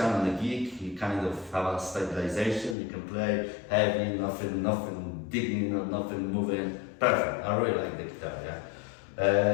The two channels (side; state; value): right; drops out; at 2.8 s